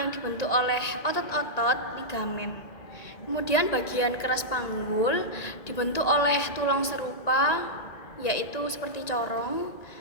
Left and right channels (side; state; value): right; late; 1.9 ms